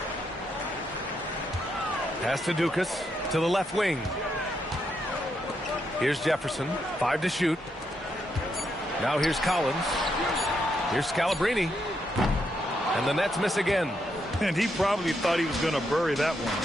Pass to Dukas to the left wing. Here's Jefferson. 5 to shoot. Now here's Collins. Here's Scalabrine. And the Nets miss again. And he probably thought he was going to bury that one.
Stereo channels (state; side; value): normal; both; correlation 0.79